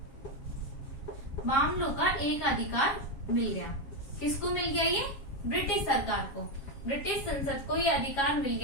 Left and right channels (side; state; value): right; late; 7.3 ms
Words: मामलों का एक अधिकार मिल गया। किसको मिल गया? ये ब्रिटिश सरकार को, ब्रिटिश संसद को ये अधिकार मिल